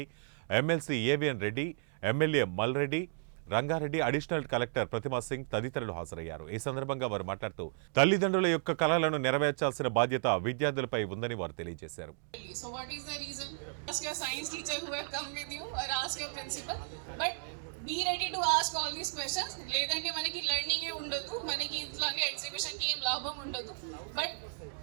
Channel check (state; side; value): silent; left; digital silence